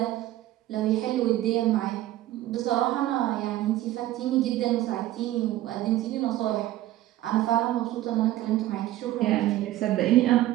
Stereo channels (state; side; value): quieter; left; 14.9 dB